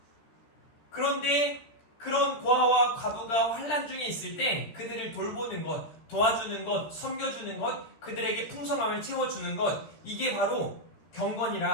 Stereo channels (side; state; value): right; late; 13 ms